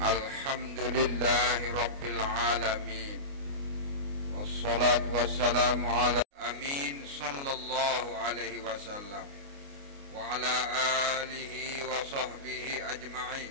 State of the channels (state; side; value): late; left; 29 ms